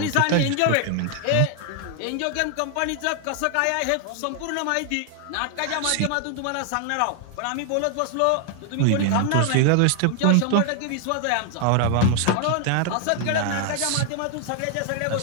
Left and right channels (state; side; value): different; both; correlation 0.00